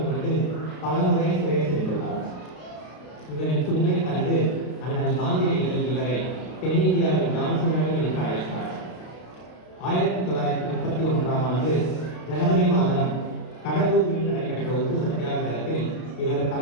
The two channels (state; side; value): late; right; 32 ms